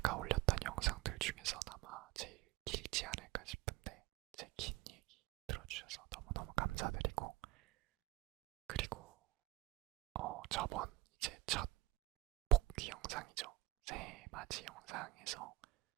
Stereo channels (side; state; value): left; quieter; 16.3 dB